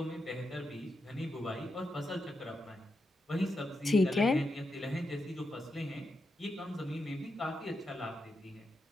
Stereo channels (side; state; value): both; normal; correlation 0.85